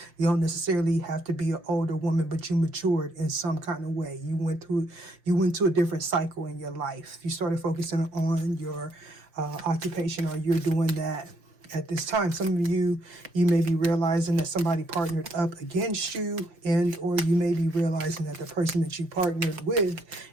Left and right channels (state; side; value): late; left; 5.8 ms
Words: You don't necessarily have to be an older woman, but you matured in some kind of way. You went to a different cycle in your life. You started focusing on your occupation, or you're doing that at this time. Some of you may be realizing that somebody partnered up against you, and or you may be realizing that the person that you partnered with,